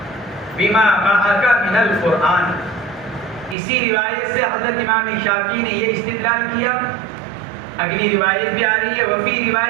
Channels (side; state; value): left; drops out; at 3.6 s